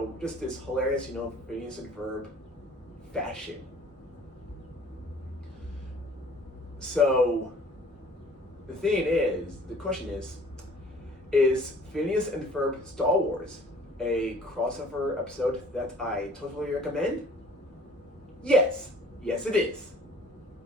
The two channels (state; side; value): normal; both; correlation 0.52